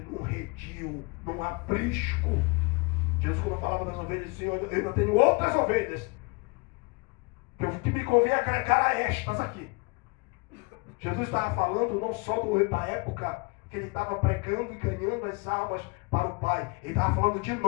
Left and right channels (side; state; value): right; quieter; 28.2 dB